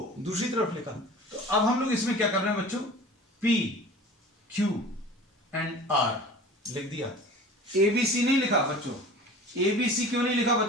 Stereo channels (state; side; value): normal; both; correlation 0.41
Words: दूसरी तरफ लिखा, तो अब हम लोग इसमें क्या कर रहे हैं बच्चों, p q एंड r लिख दिया, abc नहीं लिखा बच्चों, abc क्यों नहीं लिखा